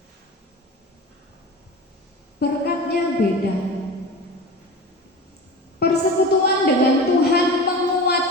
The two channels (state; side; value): normal; both; correlation 0.32